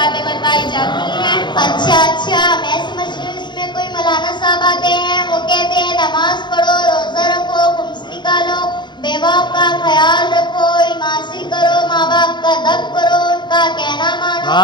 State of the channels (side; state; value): right; late; 0.22 ms